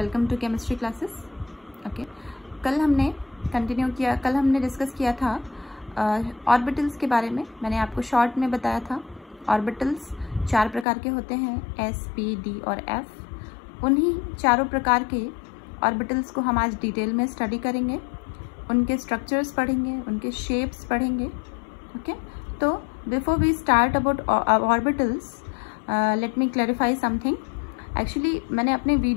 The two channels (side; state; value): right; drops out; at 10.9 s